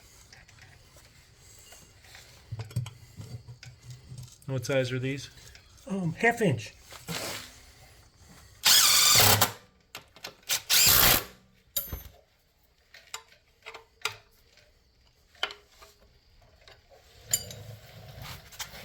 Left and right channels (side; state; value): both; identical; correlation 1.00